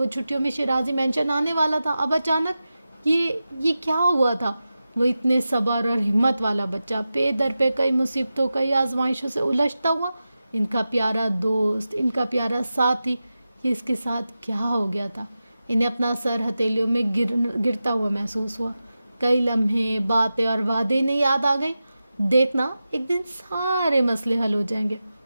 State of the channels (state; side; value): inverted; both; correlation -0.93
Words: چھٹیوں میں شیرازی مینشن آنے والا تھا۔ اب اچانک یہ کیا ہوا تھا؟ وہ اتنے صبر اور ہمت والا بچہ، پے در پہ کئی مصیبتوں، کئی آزمائشوں سے الجھتا ہوا، ان کا پیارا دوست، ان کا پیارا ساتھی، یہ اس کے ساتھ کیا ہو گیا تھا؟ انہیں اپنا سر ہتھیلیوں میں گرتا ہوا محسوس ہوا۔ کئی لمحے، باتیں اور وعدے انہیں یاد آ گئیں۔ دیکھنا، ایک دن سارے مسئلے حل ہو جائیں گے،